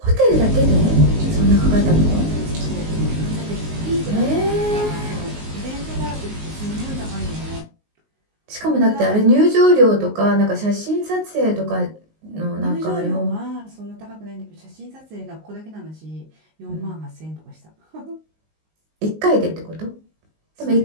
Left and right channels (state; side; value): late; left; 19 ms